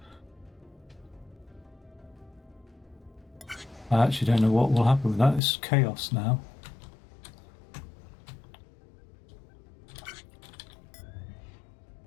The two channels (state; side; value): drops out; right; at 5.4 s